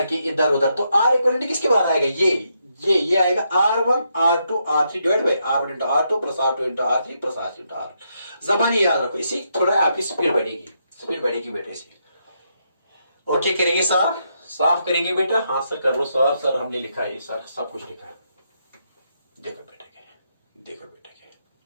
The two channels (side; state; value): both; inverted; correlation -0.79